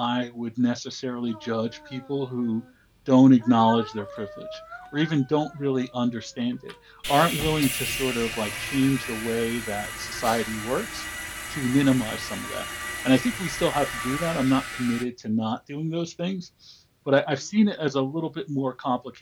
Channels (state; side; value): identical; both; correlation 1.00